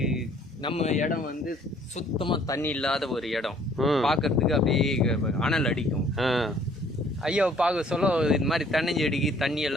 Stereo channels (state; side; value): normal; both; correlation 0.58